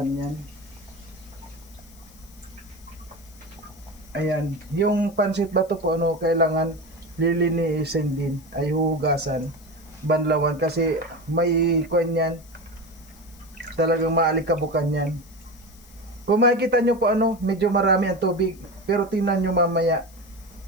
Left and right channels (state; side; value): noise; left; hiss, 25 dB below the sound